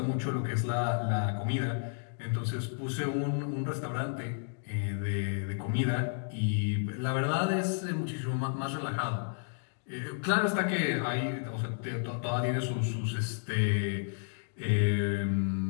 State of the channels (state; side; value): silent; right; digital silence